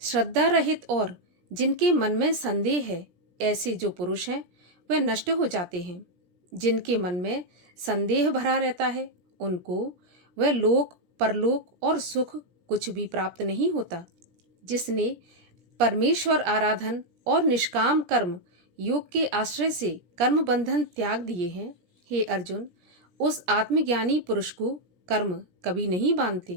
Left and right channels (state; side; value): late; left; 17 ms